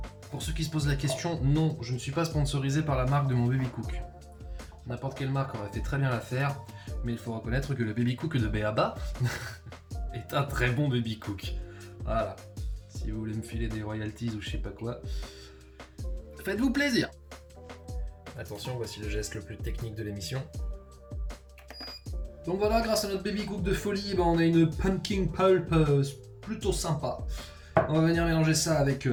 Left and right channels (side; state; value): both; identical; correlation 1.00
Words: Pour ceux qui se posent la question, non, je ne suis pas sponsorisé par la marque de mon Baby Cook. N'importe quelle marque aurait fait très bien l'affaire, mais il faut reconnaître que le Baby Cook de Béaba est un très bon Baby Cook. Voilà, si vous voulez me filer des royalties ou je sais pas quoi, faites-vous plaisir. Attention, voici le geste le plus technique de l'émission. Donc voilà, grâce à notre Baby Cook de folie, on a une pumpkin pulp plutôt sympa. On va venir mélanger ça avec